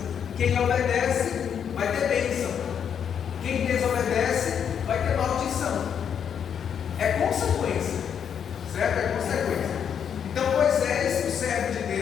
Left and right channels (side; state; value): right; quieter; 8.0 dB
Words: Quem obedece vai ter bênção. Quem desobedece vai ter maldição. É consequência. Certo? É consequência. Então Moisés, o servo de